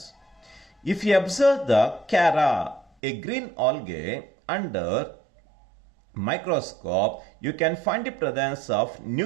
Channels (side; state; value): left; drops out; at 2.9 s